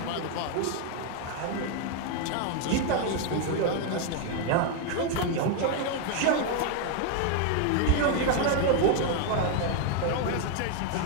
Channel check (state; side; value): different; both; correlation 0.01